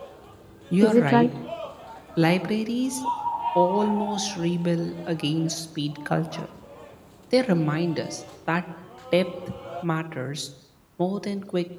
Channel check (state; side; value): identical; both; correlation 1.00